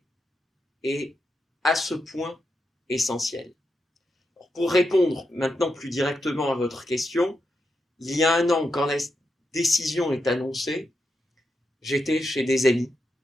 est à ce point essentielle. Pour répondre maintenant plus directement à votre question, il y a un an, quand la décision est annoncée, j'étais chez des amis.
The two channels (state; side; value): normal; both; correlation 0.85